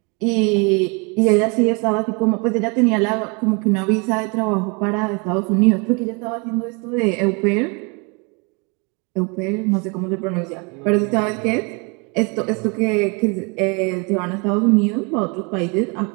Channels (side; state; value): left; quieter; 31.8 dB